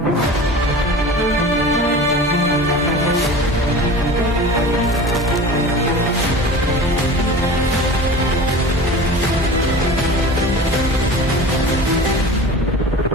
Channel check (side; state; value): both; normal; correlation 0.36